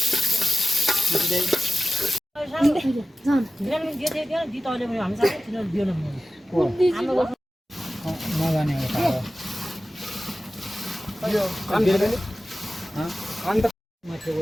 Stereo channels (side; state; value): both; normal; correlation 0.95